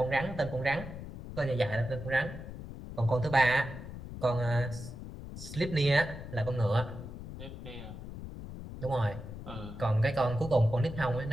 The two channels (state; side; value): noise; left; rumble, 11 dB below the sound